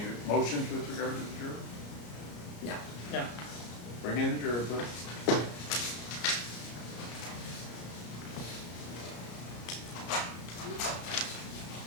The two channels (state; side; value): late; right; 34 ms